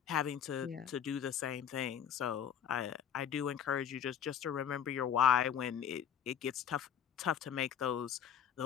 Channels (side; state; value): right; quieter; 8.8 dB